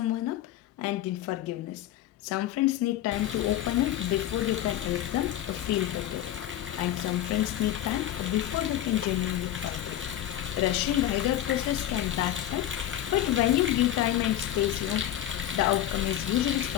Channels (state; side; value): quieter; right; 12.5 dB